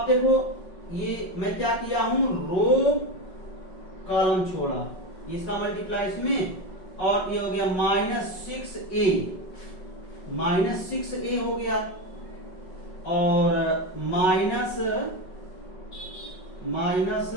देखो ये मैं क्या किया हूं, रो कॉलम छोड़ा, इसका मल्टीप्लाई इसमें, और ये हो गया -6a हो गया, और माइनस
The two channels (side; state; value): right; late; 5.3 ms